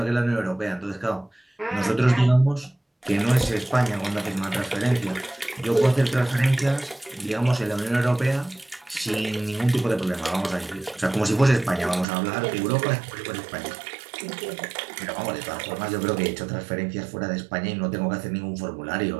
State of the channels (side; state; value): left; drops out; at 12.1 s